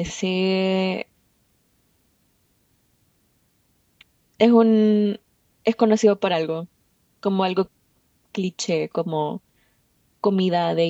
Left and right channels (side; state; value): both; identical; correlation 1.00